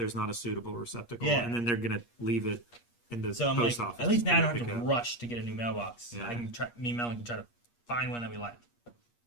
not a suitable receptacle, Yeah. and then they're gonna leave it in the So I'm post like, office. at least now I don't for you have to pick up. rush to get a new mailbox. Yeah. I can try. Me and Melanie can try to find one that we like,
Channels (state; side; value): late; right; 8.4 ms